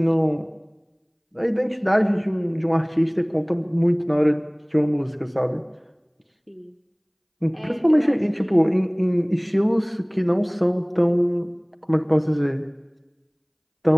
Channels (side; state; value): both; identical; correlation 1.00